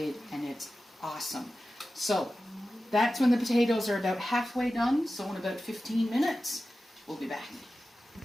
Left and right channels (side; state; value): both; normal; correlation 0.94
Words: and it's awesome. So that's when the potatoes are about halfway done. So in about 15 minutes, we'll be back.